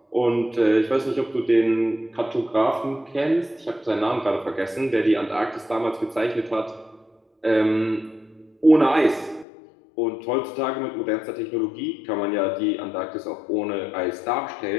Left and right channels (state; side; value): drops out; right; at 9.5 s